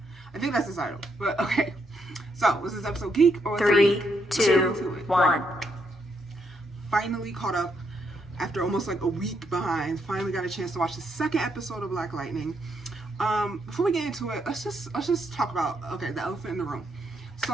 I think that's the title. But okay. So, was this episode Geek or 3, 2, 1. Finally caught up after almost like a week behind. Finally got a chance to watch the second episode of Black Lightning. Before we get into it, let's just talk about the elephant in the room.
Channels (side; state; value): both; normal; correlation 0.77